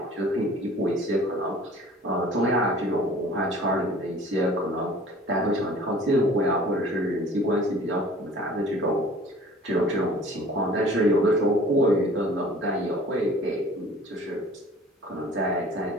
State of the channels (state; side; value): normal; both; correlation 0.48